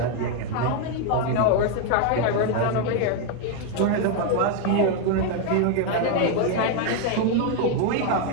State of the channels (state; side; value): different; both; correlation 0.01